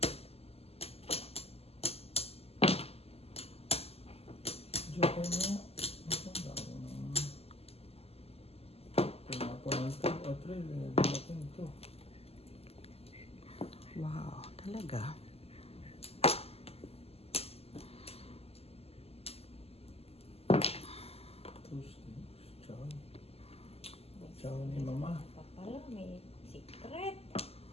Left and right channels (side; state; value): right; late; 0.29 ms